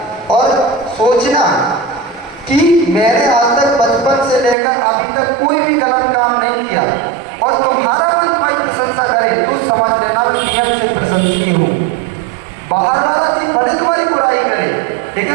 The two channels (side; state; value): left; drops out; at 4.5 s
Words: और सोचना कि मैंने आज तक बचपन से लेकर अभी तक कोई भी गलत काम नहीं किया, और तुम्हारा मन तुम्हारी प्रशंसा करे तो समझ लेना मैं नियम से प्रशंसनीय हूँ। बाहर वाला जी भले तुम्हारी बुराई करे,